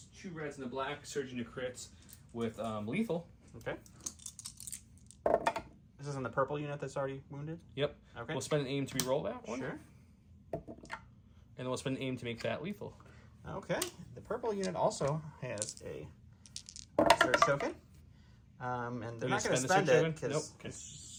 2 reds and a black, surging to crits with lethal. Okay. This is in the purple unit that's already wounded? Yep. Okay. We'll spend an aim to reroll that one. Sure. And then we'll spend an aim to make that lethal. Okay. The purple unit also has a search token. And they're not going to spend it because it's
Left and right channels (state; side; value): identical; both; correlation 1.00